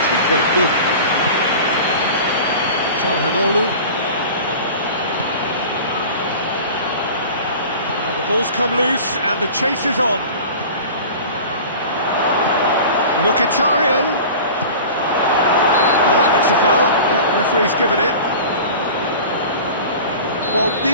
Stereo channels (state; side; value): inverted; both; correlation -0.38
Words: quite good. Çalhanoğlu. Now the ball's come loose and the chase is on. Mkhitaryan. That's a foul. Yeah, referee's given it. Well,